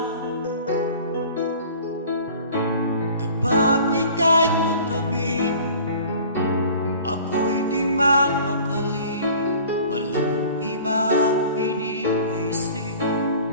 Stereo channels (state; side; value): inverted; both; correlation -0.45